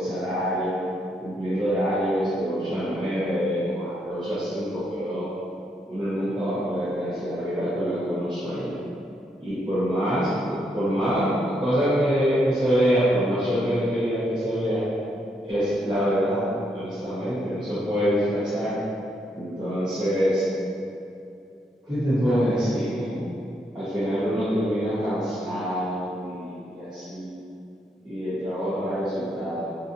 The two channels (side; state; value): both; normal; correlation 0.76